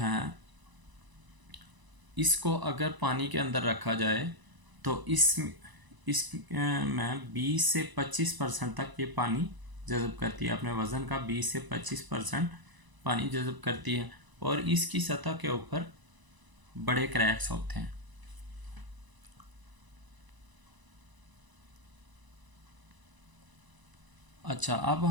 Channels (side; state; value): left; late; 1.0 ms